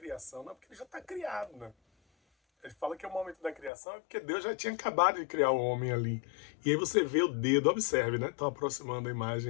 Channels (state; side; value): drops out; right; at 3.7 s